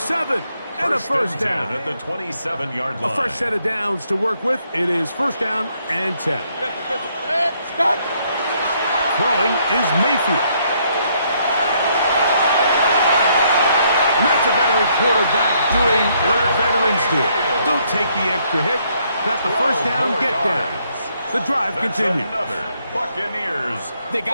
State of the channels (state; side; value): inverted; both; correlation -0.71